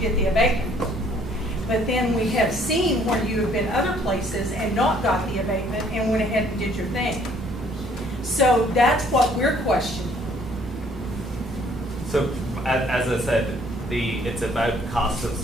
the abatement. But then we have seen where you have been other places and not got the abatement and went ahead and did your thing. So that's what we're questioning. So, as I said, it's about cost of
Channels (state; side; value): normal; both; correlation 0.61